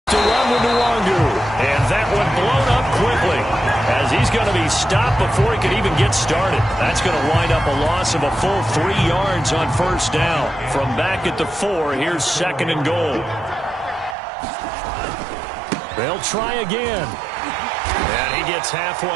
To run with Nwangu. And that one blown up quickly, as he's going to be stopped before he could even get started. That's going to wind up a loss of a full 3 yards on first down. From back at the 4, here's 2nd and goal. They'll try again. And he gets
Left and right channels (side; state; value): left; drops out; at 14.2 s